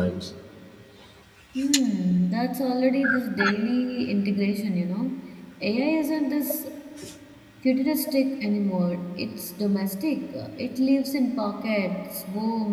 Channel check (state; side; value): identical; both; correlation 1.00